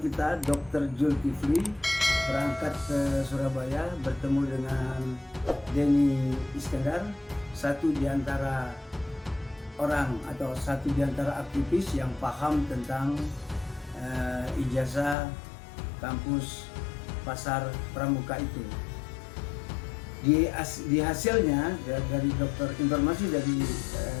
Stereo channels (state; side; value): drops out; right; at 15.2 s